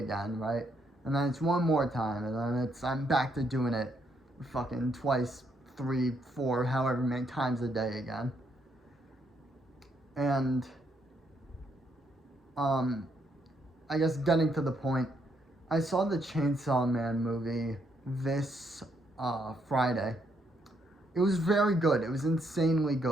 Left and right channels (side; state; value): both; normal; correlation 0.74